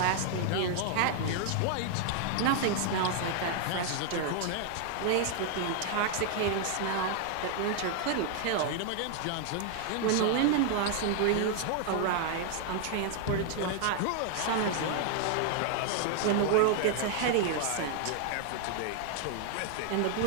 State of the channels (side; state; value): both; different; correlation 0.00